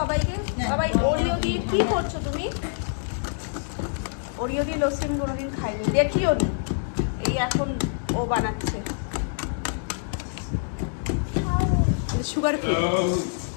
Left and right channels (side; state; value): right; silent; digital silence